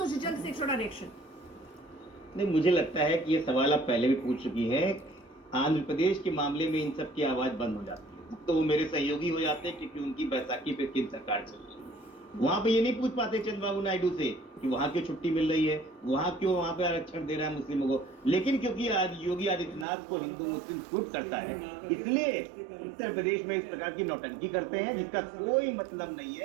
जी, जल्द से एक छोटा रिएक्शन। नहीं, मुझे लगता है कि ये सवाल आप पहले भी पूछ चुकी हैं। आंध्र प्रदेश के मामले में इन सब की आवाज बंद हो जाती है, तो वो मेरे सहयोगी हो जाते हैं, क्योंकि उनकी बैसाखी पे किन सरकार चल रही है। वहां पे ये नहीं पूछ पाते चंद्रबाबू नायडू से कि वहां क्यों छुट्टी मिल रही है, वहां क्यों वहां पे आरक्षण दे रहा है मुस्लिमों को। लेकिन क्योंकि आज योगी आदित्यनाथ को हिंदू मुस्लिम सूट करता है, इसलिए उत्तर प्रदेश में इस प्रकार की नौटंकी करते हैं, जिसका कोई मतलब नहीं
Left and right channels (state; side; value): drops out; left; at 19.9 s